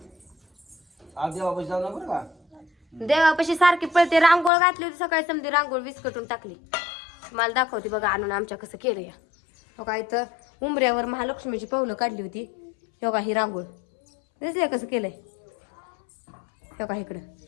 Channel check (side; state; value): right; drops out; at 4.5 s